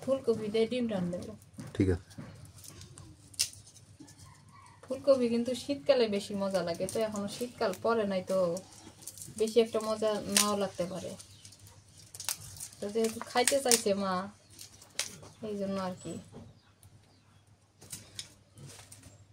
ফুলকপি দিয়ে ডিম রান্না দেবো। ঠিক আছে। ফুলকপি কিন্তু শীতকালে বেশি মজা লাগে, তো এখনো শীতকাল পরে নাই, তো বেশি একটা মজা নাও লাগতে পারে। তো যেহেতু খাইতে চাইছে মা, এই জন্য আর কি।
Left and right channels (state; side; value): identical; both; correlation 1.00